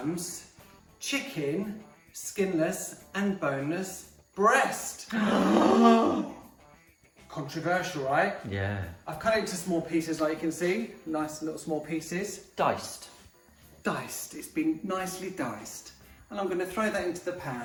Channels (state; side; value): identical; both; correlation 1.00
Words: chicken, skinless and boneless breast. Controversial, right? Yeah. I've cut it into small pieces like you can see. Nice little small pieces. Diced. Diced, it's been nicely diced. And I'm going to throw that into the